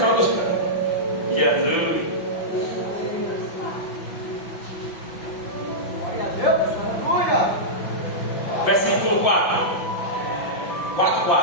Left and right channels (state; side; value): late; right; 6.0 ms